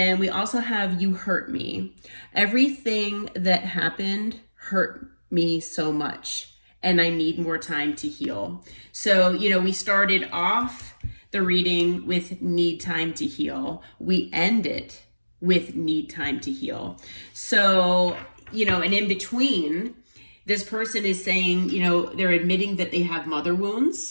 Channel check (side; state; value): both; inverted; correlation -1.00